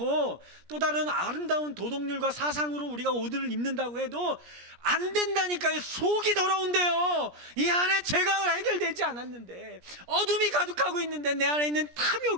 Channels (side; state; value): left; late; 17 ms